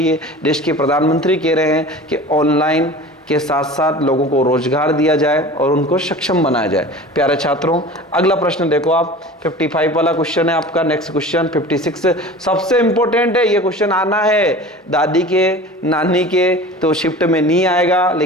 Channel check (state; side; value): normal; both; correlation 0.38